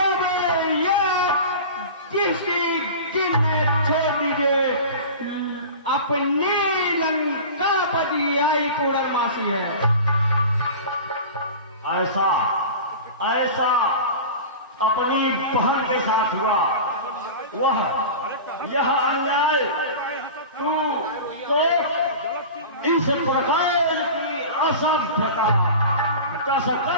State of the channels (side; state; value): both; inverted; correlation -0.34